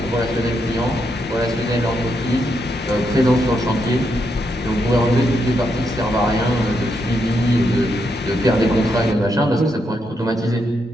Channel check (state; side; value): normal; both; correlation 0.80